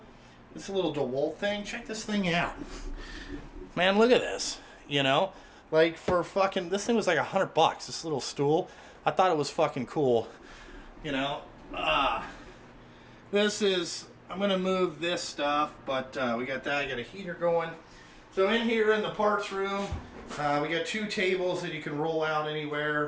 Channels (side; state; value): both; identical; correlation 1.00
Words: This little DeWalt thing. Check this thing out. Man, look at this. You know? Like for fucking, this thing was like $100, this little stool. I thought it was fucking cool. You know, this is, I'm going to move this stuff, but we got that, I got a heater going. So in here in the parts room, we got 2 tables that you can roll out